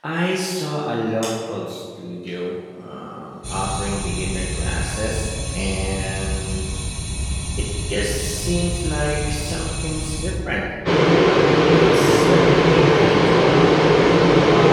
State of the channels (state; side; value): identical; both; correlation 1.00